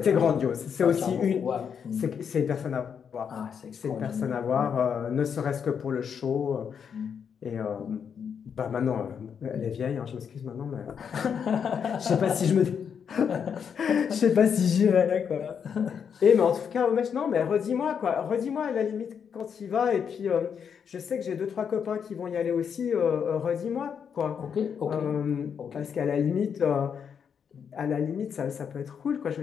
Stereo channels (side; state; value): right; quieter; 7.2 dB